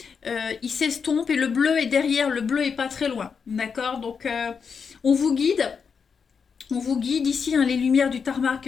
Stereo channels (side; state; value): right; quieter; 6.1 dB